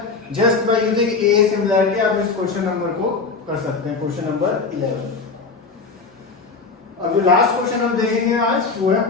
just by using A similarity आप इस क्वेश्चन नंबर को कर सकते हैं, क्वेश्चन नंबर 11। अब जो लास्ट क्वेश्चन हम देखेंगे आज वो है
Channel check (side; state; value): right; quieter; 4.4 dB